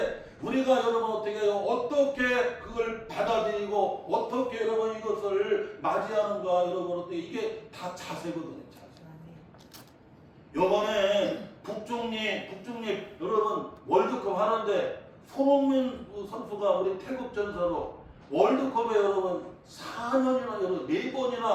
우리가 여러분 어떻게 해요? 어떻게 그걸 받아들이고 어떻게 여러분 이것을 맞이하는가 여러분 어떻게 이게 다 자세거든요. 자세. 요번에 북중립 여러분 월드컵 하는데 손흥민 선수가 우리 태국 전사로 월드컵에 여러분 4년이나 여러분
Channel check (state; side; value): identical; both; correlation 1.00